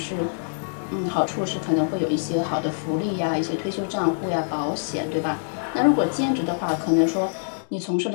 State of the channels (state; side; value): silent; right; digital silence